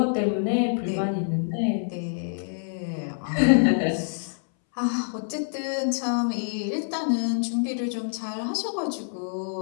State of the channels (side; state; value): right; silent; 61 dB below the other